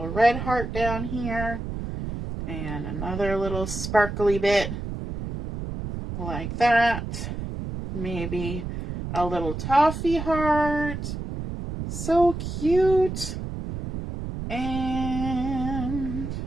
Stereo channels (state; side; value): noise; right; rumble, 6 dB below the sound